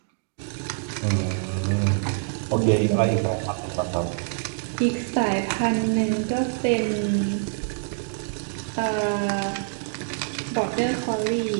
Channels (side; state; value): left; silent; digital silence